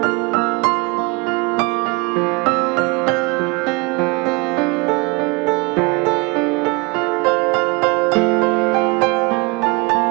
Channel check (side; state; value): left; quieter; 27.7 dB